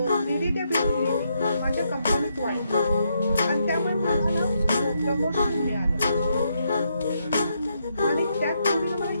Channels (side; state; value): both; inverted; correlation -0.78